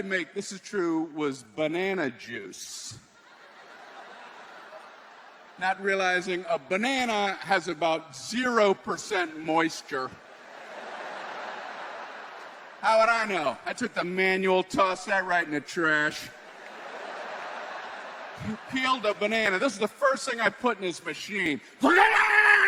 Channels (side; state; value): both; identical; correlation 1.00